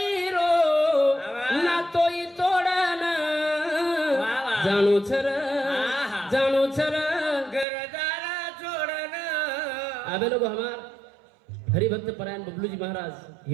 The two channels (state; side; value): drops out; left; at 7.7 s